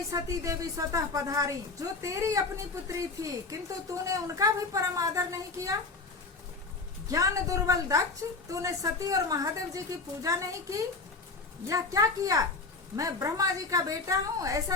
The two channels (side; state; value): right; quieter; 3.9 dB